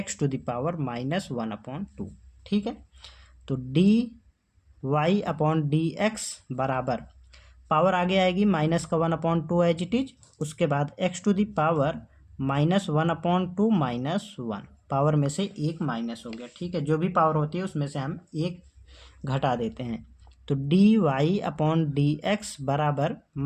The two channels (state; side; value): identical; both; correlation 1.00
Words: ठीक है। तो dy/dx बराबर पावर आगे आएगी -1/2 एज इट इज, उसके बाद x⁻−1/2 -1, पावर में से एक माइनस हो गया, ठीक है। जो भी पावर होती है उसमें से हम एक घटा देते हैं। तो dy/dx बराबर